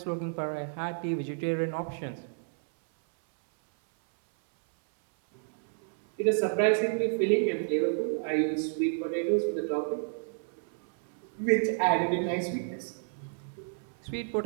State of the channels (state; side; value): silent; left; 57 dB below the other